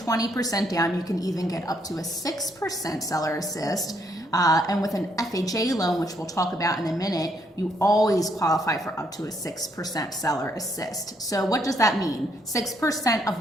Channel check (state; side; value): normal; both; correlation 0.72